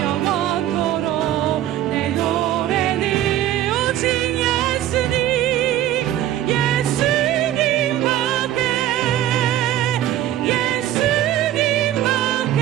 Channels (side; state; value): left; quieter; 12.6 dB